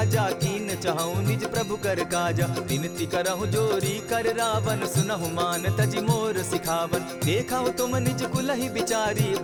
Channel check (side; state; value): both; identical; correlation 1.00